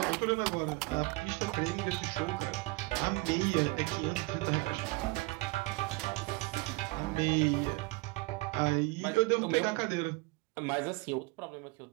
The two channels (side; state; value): left; quieter; 23.9 dB